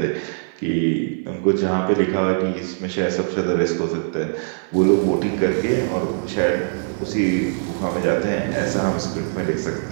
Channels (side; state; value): left; silent; 55 dB below the other